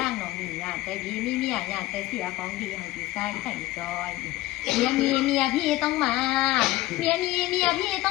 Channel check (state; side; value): quieter; right; 17.5 dB